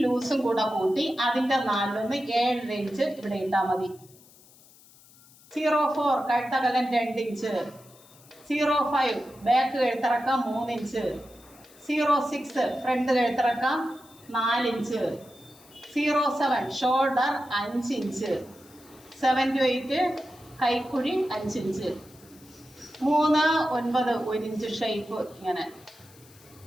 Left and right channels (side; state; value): left; noise; hiss, 25 dB below the sound